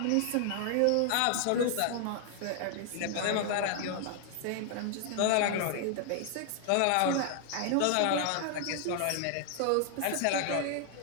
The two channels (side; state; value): both; different; correlation 0.00